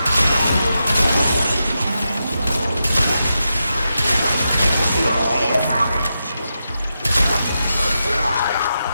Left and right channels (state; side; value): inverted; both; correlation -0.88